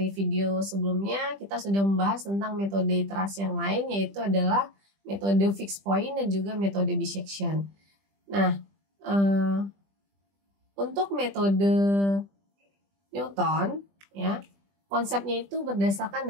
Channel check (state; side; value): late; left; 20 ms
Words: video sebelumnya kita sudah membahas tentang metode iterasi yang lain, yaitu adalah metode fixed point dan juga metode bisection. Nah, untuk metode Newton ya, konsepnya itu berdasarkan